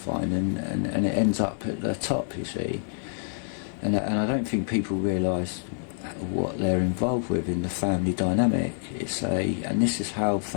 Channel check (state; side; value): silent; right; digital silence